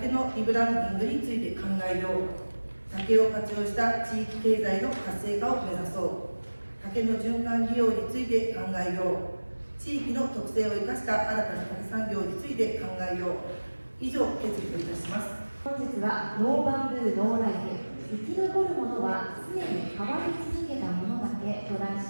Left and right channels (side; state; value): both; inverted; correlation -1.00